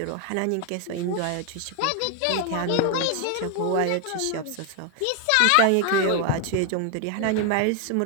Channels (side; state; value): both; different; correlation 0.01